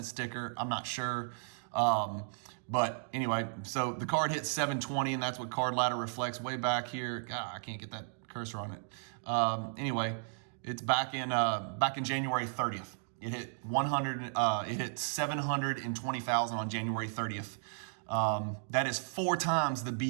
sticker. I'm not sure. But anyway, so the card hit 720, and that's what Card Ladder reflects way back here. God, I can't get that cursor on it. Anyway, it's back in January 30th. It hit 720,000 on January 30th. That is 4 times the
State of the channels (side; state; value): left; silent; digital silence